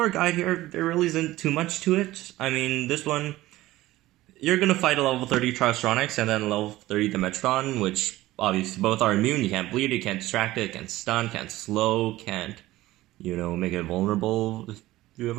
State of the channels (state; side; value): quieter; left; 16.8 dB